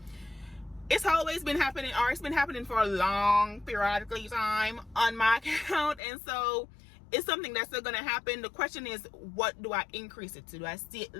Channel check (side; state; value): right; drops out; at 6.0 s